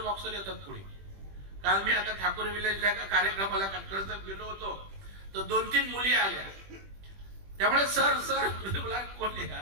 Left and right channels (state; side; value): late; left; 20 ms